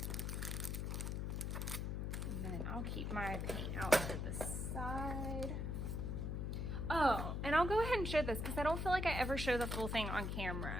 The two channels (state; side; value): noise; left; hum, 2 dB below the sound